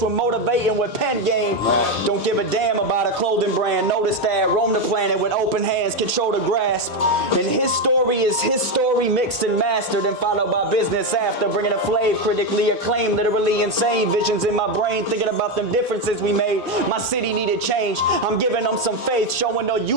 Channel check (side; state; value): both; normal; correlation 0.09